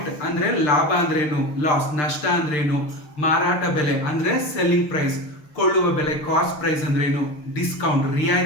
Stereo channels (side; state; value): right; late; 6.7 ms